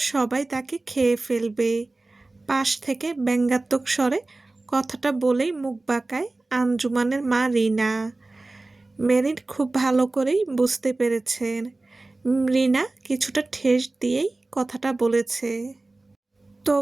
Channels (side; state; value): left; quieter; 3.1 dB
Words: সবাই তাকে খেয়ে ফেলবে। পাশ থেকে ব্যঙ্গাত্মক স্বরে কথাটা বলেই মুখ বাঁকায় আঞ্জুমানের মা রিনা। মেরিন খুব ভালো করেই বুঝতে পেরেছেন রিনা কিছুটা ঠেস দিয়েই কথাটা বলেছে।